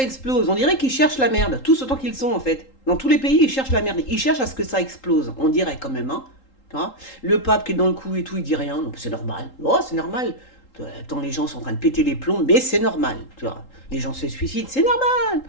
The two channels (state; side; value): late; right; 3.8 ms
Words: explose. On dirait qu'ils cherchent la merde, tous autant qu'ils sont, en fait. Dans tous les pays, ils cherchent la merde. Ils cherchent à ce que ça explose. On dirait quand même, hein. Tu vois, le pape qui est dans le coup et tout, il dit rien. Non, c'est normal. Oh, c'est normal. Attends, les gens sont en train de péter les plombs, mais c'est normal. Tu vois, les gens se suicident, c'est normal.